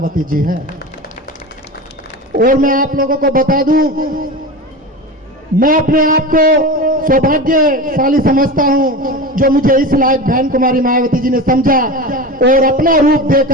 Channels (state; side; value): normal; both; correlation 0.27